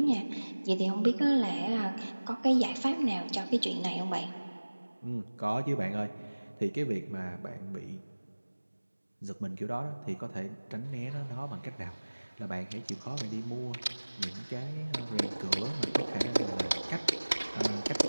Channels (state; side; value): inverted; both; correlation -1.00